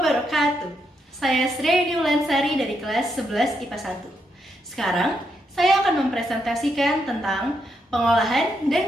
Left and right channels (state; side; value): normal; both; correlation 0.79